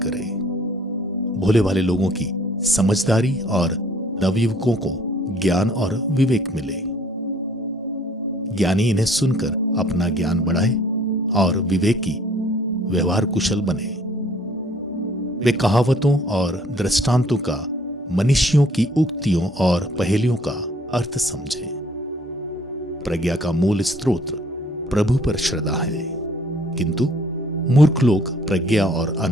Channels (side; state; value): both; normal; correlation 0.58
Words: करे, भोले भाले लोगों की समझदारी और नवयुवकों को ज्ञान और विवेक मिले। ज्ञानी इन्हें सुनकर अपना ज्ञान बढ़ाए और विवेकी व्यवहार कुशल बने। वे कहावतों और दृष्टांतों का, मनीषियों की उक्तियों और पहेलियों का अर्थ समझे। प्रज्ञा का मूल स्रोत प्रभु पर श्रद्धा है, किंतु मूर्ख लोग प्रज्ञा और